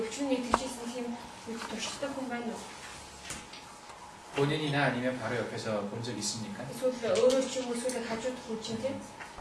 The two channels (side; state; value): both; identical; correlation 1.00